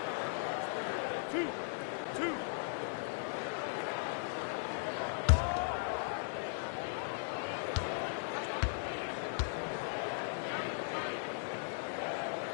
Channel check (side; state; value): right; silent; digital silence